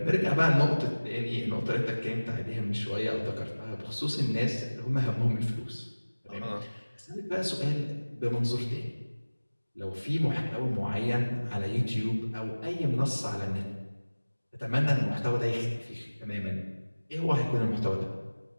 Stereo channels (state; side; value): inverted; both; correlation -1.00